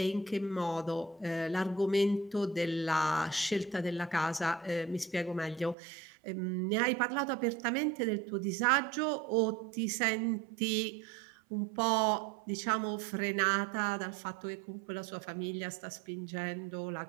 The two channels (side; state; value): left; drops out; at 5.8 s